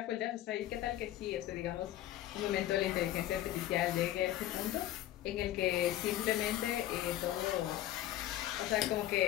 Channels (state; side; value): quieter; right; 13.5 dB